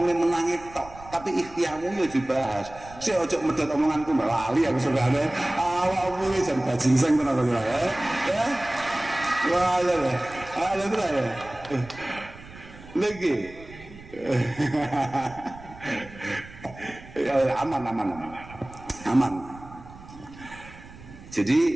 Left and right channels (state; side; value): noise; right; rumble, 18 dB below the sound